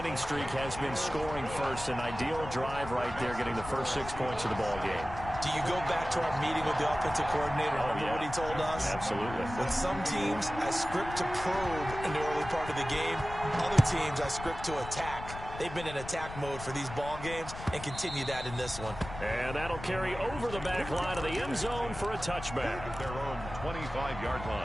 streak has been scoring first. An ideal drive right there, getting the first 6 points of the ball game. Do you go back to our meeting with the offensive coordinator? Remember what he told us? Absolutely. With some teams, I script to probe in the early part of the game. Other teams, I script to attack. They've been in attack mode for these ball games and continue that in this one. And that'll carry over the back line of the end zone for a touchback. At their own 25-yard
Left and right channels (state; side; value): noise; left; rumble, 11 dB below the sound